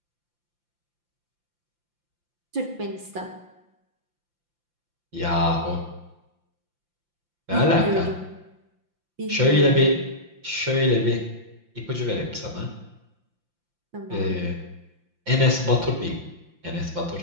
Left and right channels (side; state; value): left; late; 5.8 ms